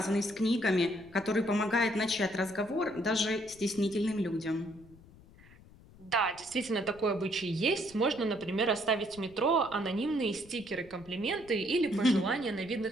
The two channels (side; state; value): left; noise; rumble, 23 dB below the sound